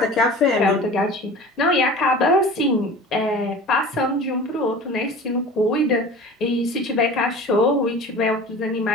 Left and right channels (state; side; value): normal; both; correlation 0.39